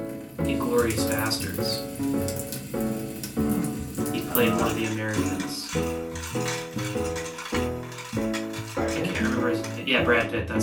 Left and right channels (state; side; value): identical; both; correlation 1.00